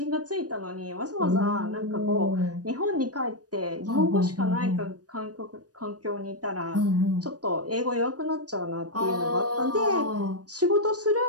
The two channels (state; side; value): late; left; 0.68 ms